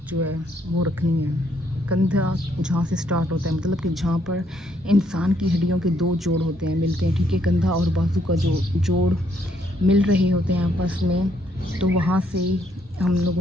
जो है वो रखनी है। कंधा जहाँ से स्टार्ट होता है, मतलब कि जहाँ पर इंसान की हड्डियों के दो जोड़ होते हैं, मिलते हैं, ठीक है, कंधा और बाजू का जो जोड़ मिल रहे होते हैं आपस में, तो वहाँ से हम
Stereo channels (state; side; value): normal; both; correlation 0.71